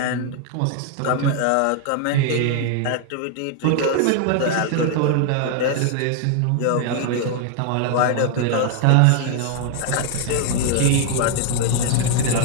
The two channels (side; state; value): both; different; correlation 0.00